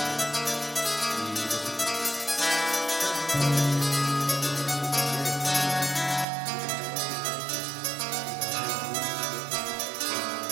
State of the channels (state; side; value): drops out; left; at 6.2 s